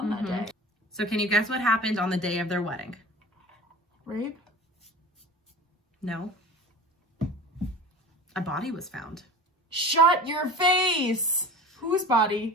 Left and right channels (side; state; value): both; normal; correlation 0.36